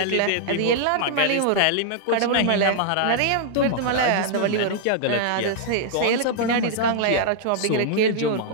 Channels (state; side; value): different; both; correlation -0.01